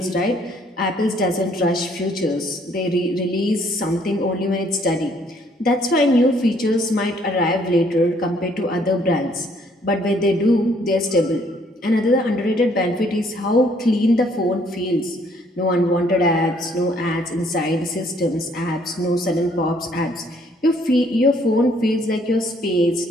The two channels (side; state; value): both; normal; correlation 0.65